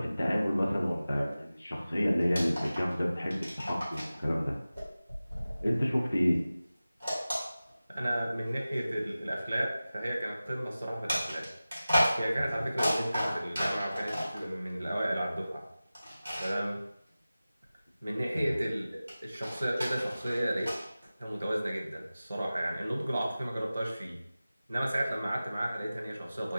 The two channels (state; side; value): inverted; both; correlation -0.96